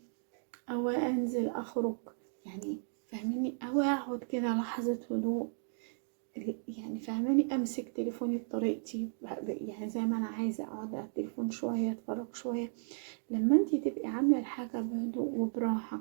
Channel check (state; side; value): silent; left; digital silence